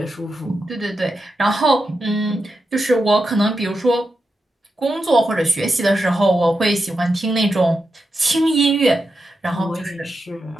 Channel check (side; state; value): both; normal; correlation 0.88